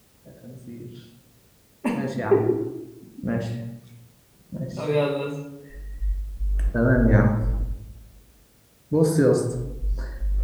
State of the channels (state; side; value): identical; both; correlation 1.00